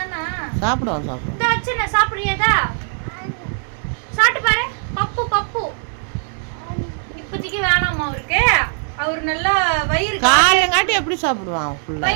தானே? சாப்பிடுவோம். இந்த வச்சு சாப்பிடுறியதா? சாப்பிட்டு பாரு. பப்பு இப்போதைக்கு வேணாமா அவருக்கு. அவர் நல்லா வயிறு காலையங்காட்டி எப்படி சாப்பிடுவான்?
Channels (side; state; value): left; silent; 66 dB below the other